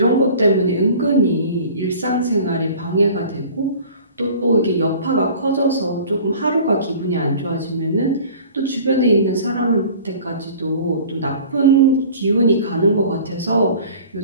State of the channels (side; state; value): both; inverted; correlation -0.45